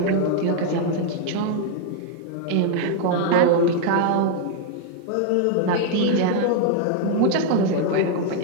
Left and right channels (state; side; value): different; both; correlation 0.00